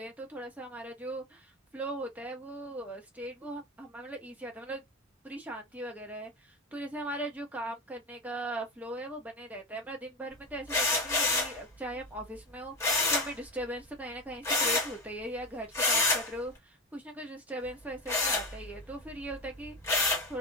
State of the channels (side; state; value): both; normal; correlation 0.18